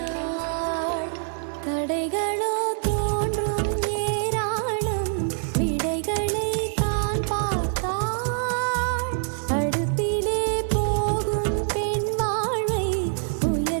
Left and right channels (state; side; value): silent; left; 62 dB below the other